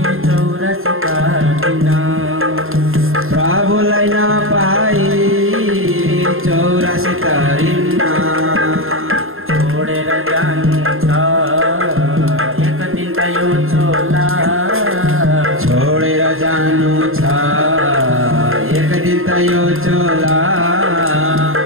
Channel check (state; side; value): late; left; 0.61 ms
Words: चौरासी काटिन, प्रभुलाई नपाई चौरासी काटिन्न। छोडेर जानु छ एक दिन त यो चोला, छोडेर जानु छ एक दिन त यो चोला,